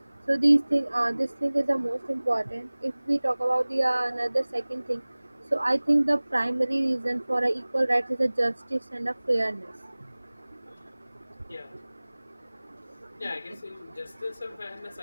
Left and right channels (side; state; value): both; inverted; correlation -1.00